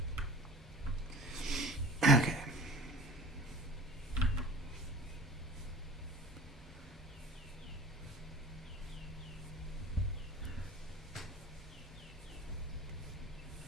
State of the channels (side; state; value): both; normal; correlation 0.41